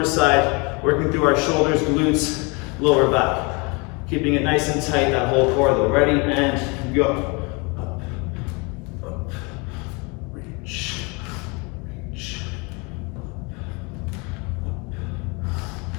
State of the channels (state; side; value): quieter; right; 29.7 dB